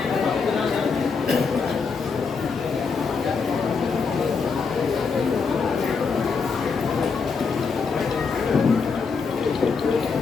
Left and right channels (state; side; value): quieter; right; 5.2 dB